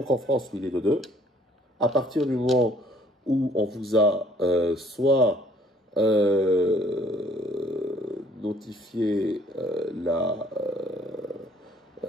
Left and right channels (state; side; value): normal; both; correlation 0.60